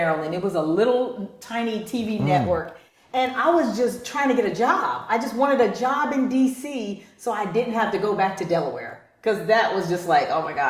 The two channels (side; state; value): both; identical; correlation 1.00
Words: It was a little tiny TV network. And I was just trying to get a job. I just wanted a job in DC so I didn't have to go back to Delaware. Because that was just like, oh my